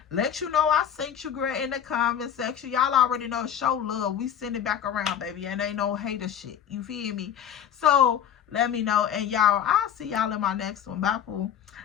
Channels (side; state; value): right; quieter; 9.0 dB